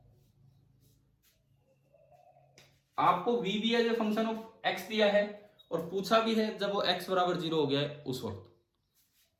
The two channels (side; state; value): both; identical; correlation 1.00